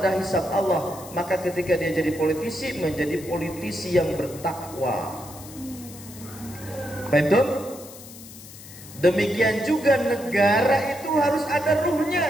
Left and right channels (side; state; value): left; noise; hiss, 17 dB below the sound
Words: hisab Allah. Maka ketika dia jadi politisi, menjadi politisi yang bertakwa. Betul? Demikian juga negara itu harus ada